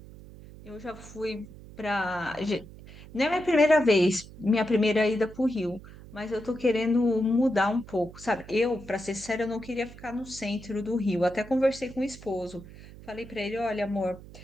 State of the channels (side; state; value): right; noise; hum, 17 dB below the sound